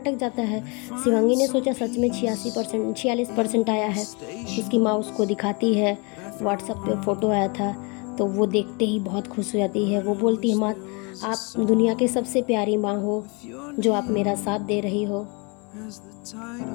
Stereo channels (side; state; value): right; quieter; 31.2 dB